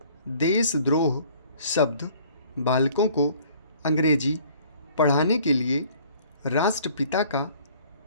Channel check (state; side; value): inverted; both; correlation -0.55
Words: देशद्रोह शब्द बालकों को अंग्रेजी पढ़ाने के लिए राष्ट्रपिता का